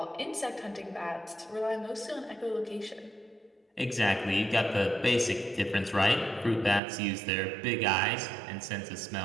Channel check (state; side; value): drops out; left; at 6.8 s